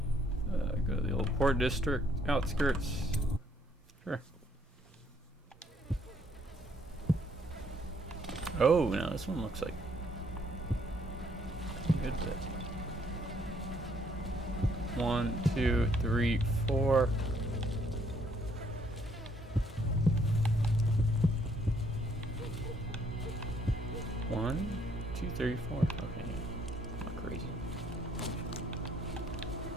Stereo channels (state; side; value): normal; both; correlation 0.67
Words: Go to the old port district, outskirts. Sure. Oh, now this one looks like a good bit. 1, 2, 3, 4. One, 2, 3, 4. Okay, not crazy.